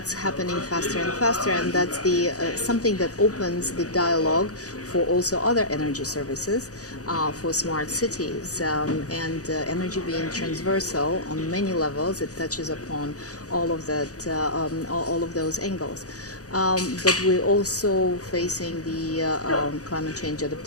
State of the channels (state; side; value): late; right; 0.66 ms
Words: happening faster and faster, and that's the something that opens the dialogue for also other energy services, for smart cities, and energy being transversal on many levels. It touches upon all of that, all of those angles. But we're also facing the climate change